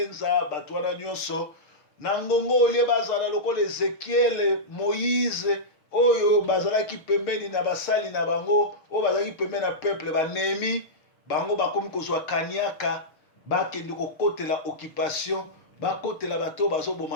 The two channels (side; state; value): right; late; 6.4 ms